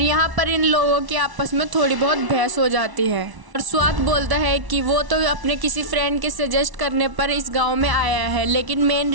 यहाँ पर इन लोगों की आपस में थोड़ी बहुत बहस हो जाती है और स्वात बोलता है कि वो तो अपने किसी फ्रेंड के सजेस्ट करने पर इस गाँव में आया है, लेकिन मेन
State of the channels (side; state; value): left; late; 1.1 ms